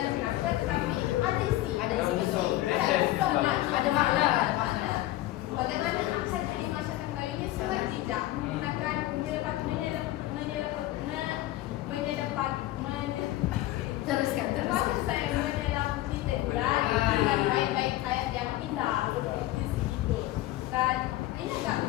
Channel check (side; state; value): right; quieter; 15.9 dB